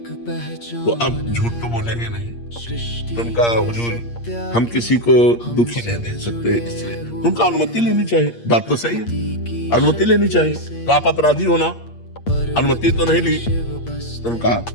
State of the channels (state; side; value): late; right; 8.5 ms